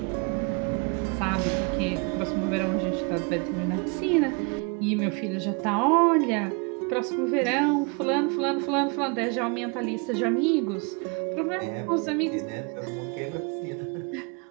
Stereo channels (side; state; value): left; quieter; 33.0 dB